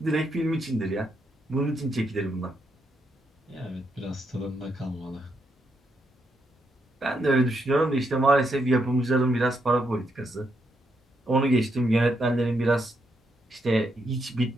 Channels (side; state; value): both; normal; correlation 0.79